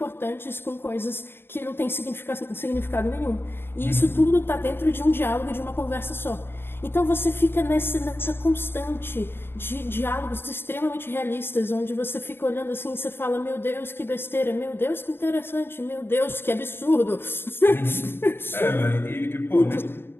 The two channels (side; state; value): right; late; 0.11 ms